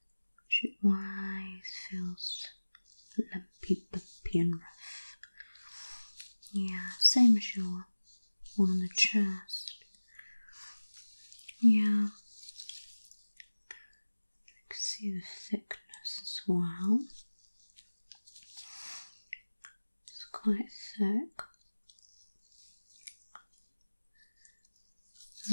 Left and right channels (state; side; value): inverted; both; correlation -1.00